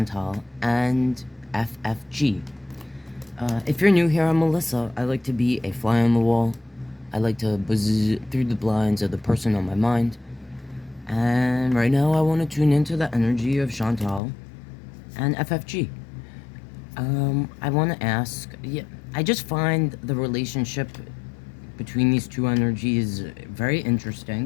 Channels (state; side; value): drops out; right; at 14.2 s